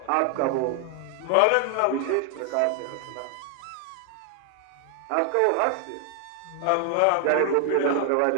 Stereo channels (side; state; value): both; different; correlation 0.00